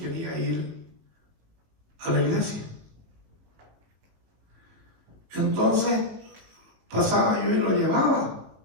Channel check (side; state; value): left; late; 19 ms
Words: ir a la iglesia. Entonces pasaba yo y lo llevaba